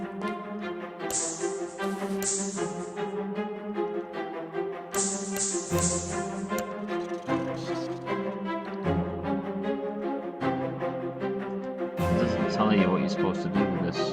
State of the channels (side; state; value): both; identical; correlation 1.00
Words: It doesn't tell you what you're supposed to do with this,